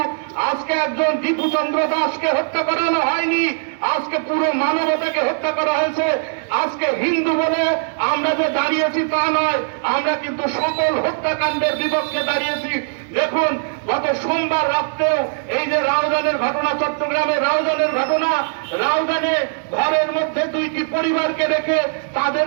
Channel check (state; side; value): silent; left; digital silence